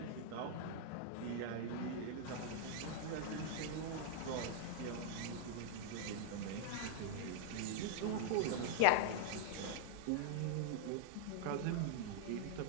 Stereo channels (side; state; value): both; different; correlation -0.01